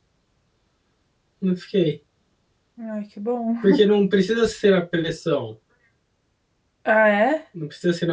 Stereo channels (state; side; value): identical; both; correlation 1.00